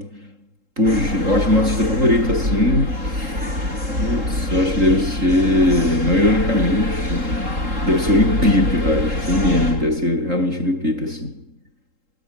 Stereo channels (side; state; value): left; late; 3.8 ms